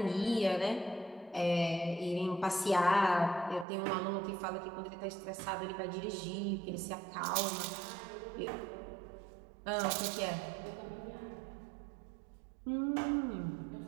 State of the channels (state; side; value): drops out; left; at 3.7 s